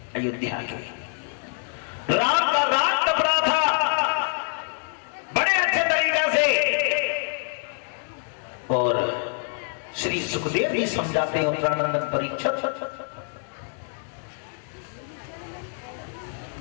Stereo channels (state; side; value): silent; right; 57 dB below the other